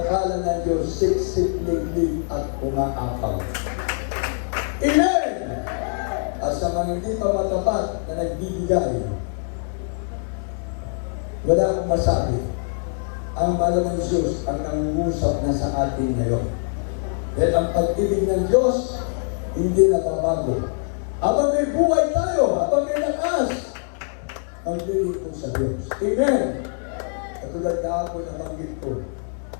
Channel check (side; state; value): right; silent; 57 dB below the other